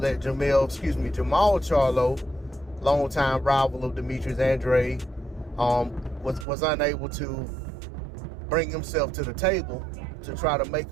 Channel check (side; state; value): left; drops out; at 6.5 s